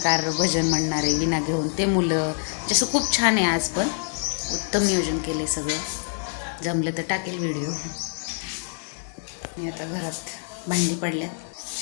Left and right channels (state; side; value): silent; right; 61 dB below the other